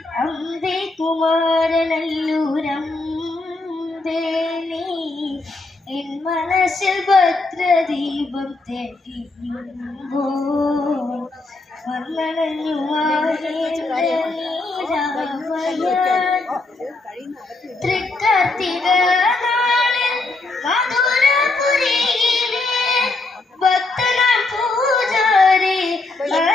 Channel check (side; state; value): right; quieter; 3.3 dB